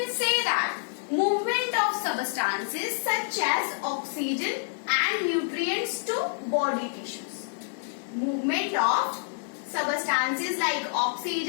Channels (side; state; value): right; silent; 60 dB below the other